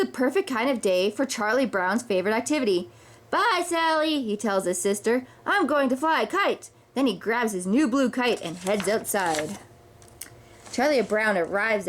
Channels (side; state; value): both; identical; correlation 1.00